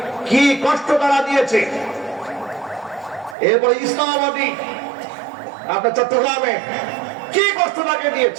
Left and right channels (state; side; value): drops out; left; at 3.4 s